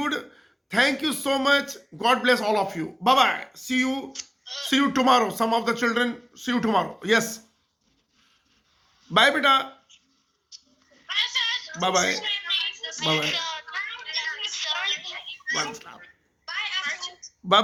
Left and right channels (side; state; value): both; identical; correlation 1.00